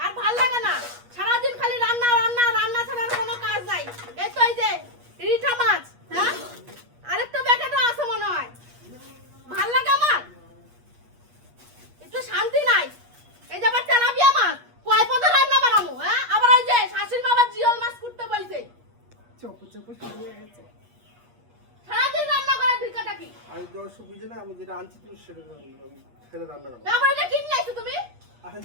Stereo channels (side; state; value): left; late; 8.4 ms